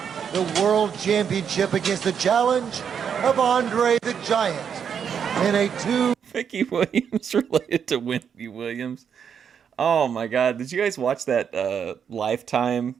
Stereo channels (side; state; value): left; quieter; 7.5 dB